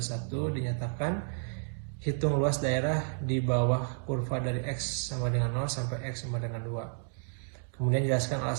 1. Dinyatakan hitung luas daerah di bawah kurva dari X sama dengan 0 sampai X sama dengan 2. Kemudian jelaskan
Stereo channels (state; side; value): silent; left; 57 dB below the other